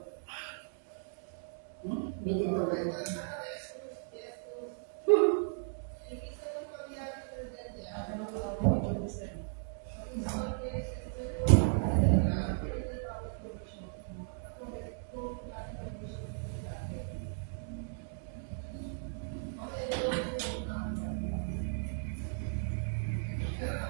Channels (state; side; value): silent; left; digital silence